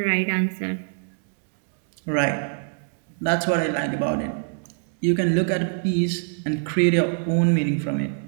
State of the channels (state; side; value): silent; left; digital silence